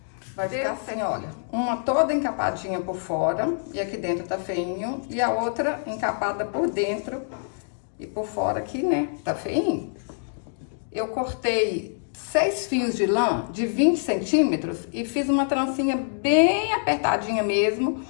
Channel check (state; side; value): silent; right; digital silence